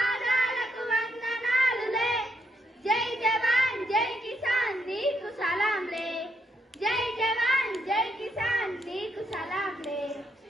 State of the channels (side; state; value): both; normal; correlation 0.78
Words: వందనాలులే జై జవాన్ జై కిసాన్ నీకు సలాంలే జై జవాన్ జై కిసాన్ నీకు సలాంలే